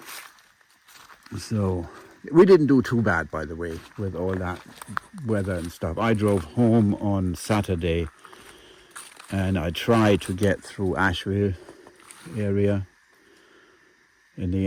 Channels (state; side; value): identical; both; correlation 1.00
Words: So we didn't do too bad, by the way, with all that weather and stuff. I drove home on Saturday and I tried to get through Asheville area. In